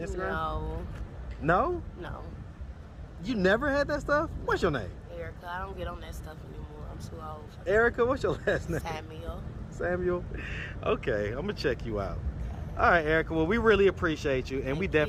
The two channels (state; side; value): identical; both; correlation 1.00